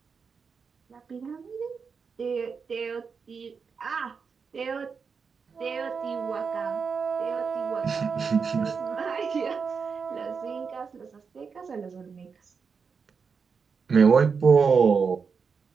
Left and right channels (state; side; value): quieter; left; 5.6 dB